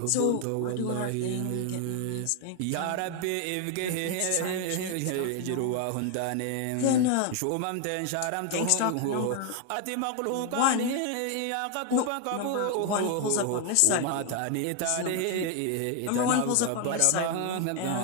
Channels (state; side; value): different; both; correlation 0.00